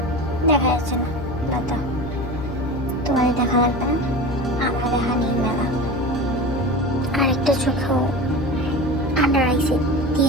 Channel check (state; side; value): noise; left; hum, 9 dB below the sound